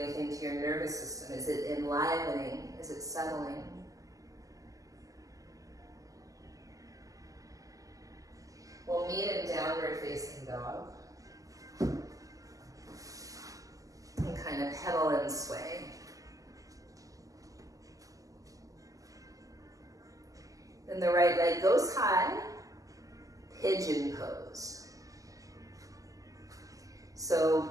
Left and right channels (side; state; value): left; late; 0.17 ms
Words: to your nervous system? Is it enlivening? Is it settling? We'll meet in downward facing dog. And kind of pedal and sway. Then the right leg goes high, pigeon pose. So